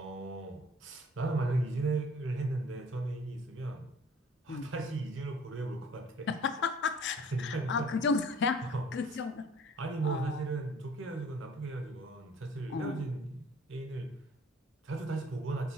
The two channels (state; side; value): normal; both; correlation 0.52